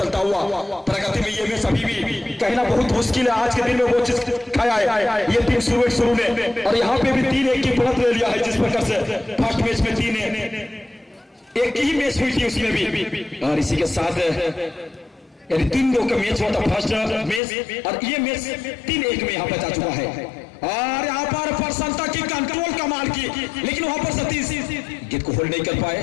चलता हुआ प्रगति में ये मैच अभी भी कहना बहुत मुश्किल है। आज के दिन में वो चीज खाया है ये टीम शुरू ने और यहाँ पे भी 3-1 की बढ़त ले लिया है, जिस प्रकार से फर्स्ट मैच में 3 एक ही मैच हुई थी उसमें भी। और इसी के साथ यानी 3-2 का मैच हुआ था फर्स्ट मैच और ये मैच 3-1 में यहाँ पर जा चुका है। और यहाँ पर प्रसन्नता की कंट्रोल कमाल की, लेकिन वहां पर सतीश गेंद को होल्ड नहीं कर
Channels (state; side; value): drops out; right; at 17.4 s